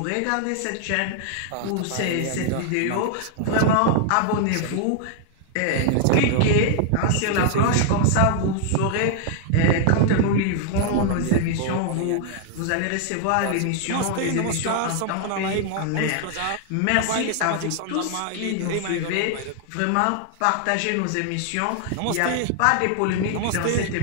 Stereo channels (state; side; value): different; both; correlation 0.00